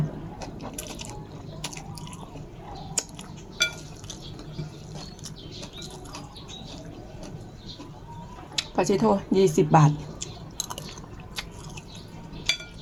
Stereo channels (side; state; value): both; identical; correlation 1.00